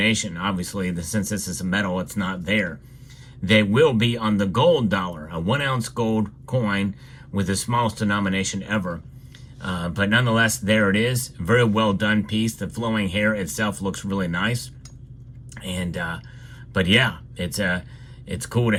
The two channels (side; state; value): both; identical; correlation 1.00